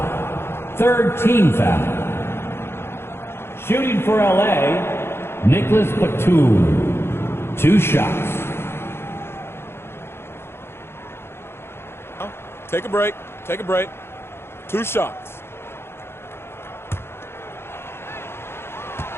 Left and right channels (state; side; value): late; right; 0.12 ms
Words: Third team foul. Shooting for LA, Nicholas Batum. 2 shots. Take a break. Take a break. 2 shots.